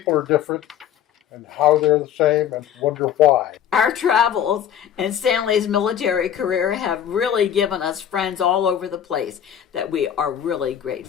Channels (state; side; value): quieter; right; 9.8 dB